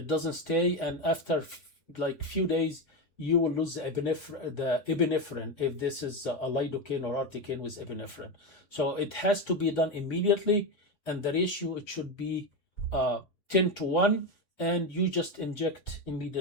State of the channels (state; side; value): late; right; 3.6 ms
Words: doesn't stay. And after like few days, you will lose the epinephrine if this is a lidocaine or articaine with epinephrine. So it has to be done immediately, and the ratio, it should be 10 to 1, and you just inject